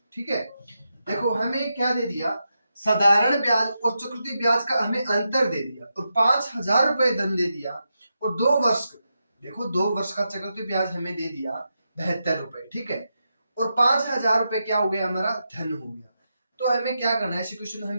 ठीक है, देखो हमें क्या दे दिया, साधारण ब्याज और चक्रवृद्धि ब्याज का हमें अंतर दे दिया और 5,000 रुपए धन दे दिया और 2 वर्ष, देखो 2 वर्ष का चक्रवृद्धि ब्याज हमें दे दिया 72 रुपए। ठीक है, और 5,000 रुपए क्या हो गया, हमारा धन हो गया। तो हमें क्या करना है, ऐसे क्वेश्चन हम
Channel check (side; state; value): both; inverted; correlation -0.87